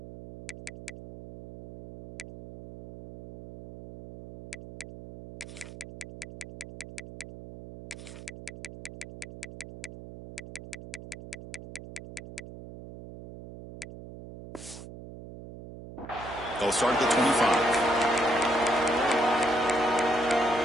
They'll start at the 25.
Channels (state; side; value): noise; right; hum, 14 dB below the sound